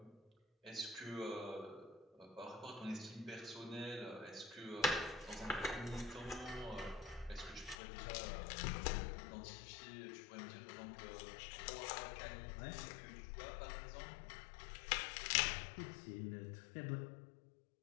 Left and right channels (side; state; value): right; drops out; at 7.8 s